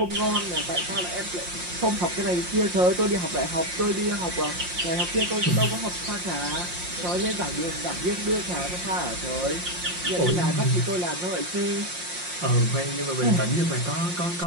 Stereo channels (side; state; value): left; late; 5.6 ms